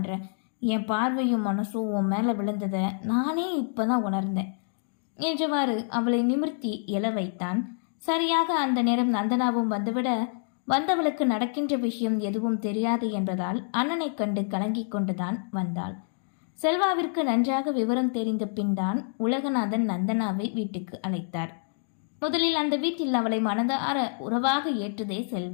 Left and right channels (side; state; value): right; silent; 60 dB below the other